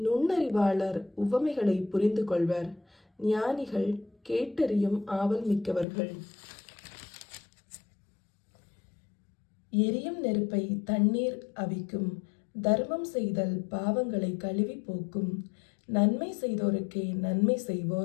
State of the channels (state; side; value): drops out; right; at 5.9 s